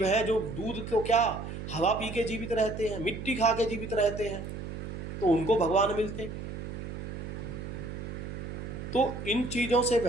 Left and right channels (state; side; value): noise; right; hum, 7 dB below the sound